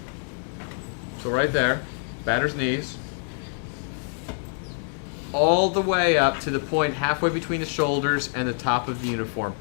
So right there, batter's knees, all the way up to the point halfway between the shoulders and the top of the uniform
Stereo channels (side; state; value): right; silent; 55 dB below the other